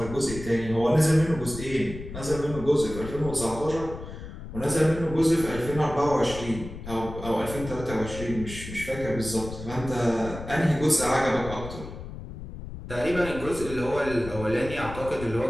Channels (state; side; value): noise; left; rumble, 11 dB below the sound